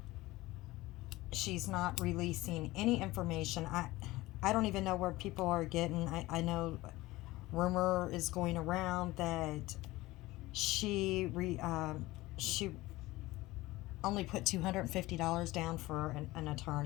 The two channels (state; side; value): quieter; right; 19.0 dB